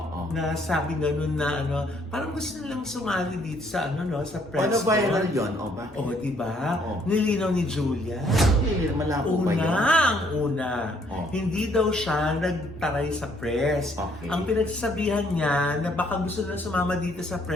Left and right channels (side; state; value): both; normal; correlation 0.66